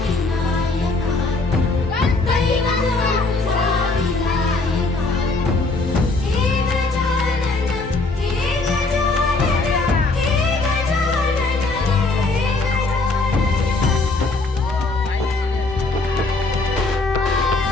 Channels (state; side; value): quieter; right; 3.4 dB